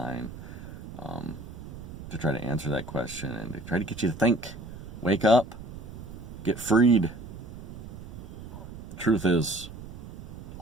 to try to answer that question and to try to get you to think. Wake up. Get freed. The truth is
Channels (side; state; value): right; noise; rumble, 12 dB below the sound